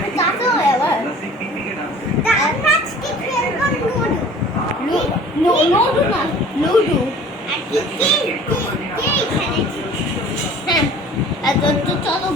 চাচা হয় আবার আজকে খেলবো লুডো না লুডো আর কি কে এখানে হ্যাঁ তো চলো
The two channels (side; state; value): both; normal; correlation 0.47